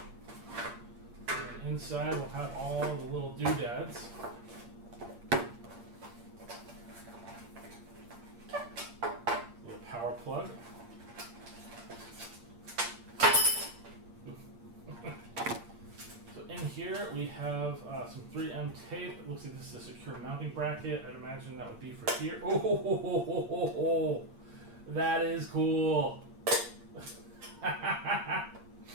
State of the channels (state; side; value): late; left; 8.6 ms